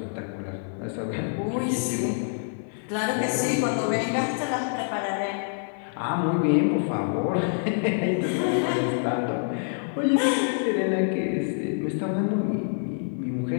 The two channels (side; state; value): right; silent; 55 dB below the other